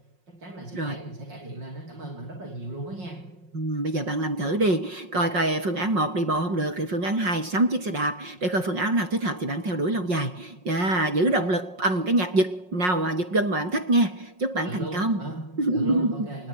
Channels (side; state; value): left; late; 5.5 ms